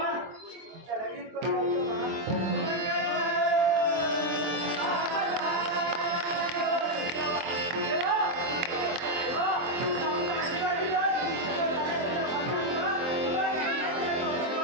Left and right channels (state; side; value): late; left; 23 ms